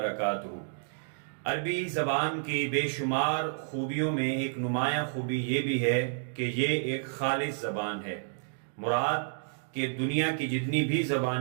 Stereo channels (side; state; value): left; silent; digital silence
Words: عربی زبان کی بے شمار خوبیوں میں ایک نمایاں خوبی یہ بھی ہے کہ یہ ایک خالص زبان ہے۔ مراد کہ دنیا کی جتنی بھی